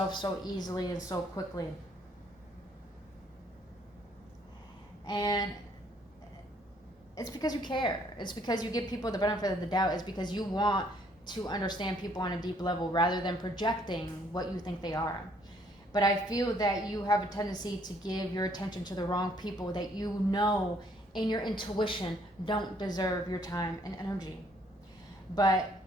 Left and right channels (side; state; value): both; normal; correlation 0.65